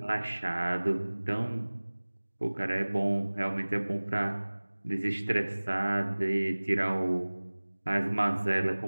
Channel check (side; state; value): both; inverted; correlation -1.00